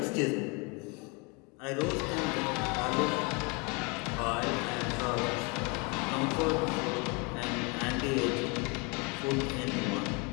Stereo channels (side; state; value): right; quieter; 30.9 dB